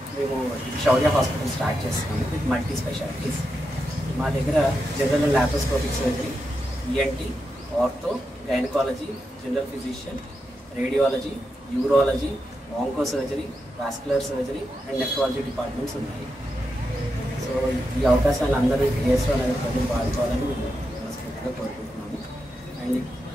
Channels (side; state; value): both; normal; correlation 0.86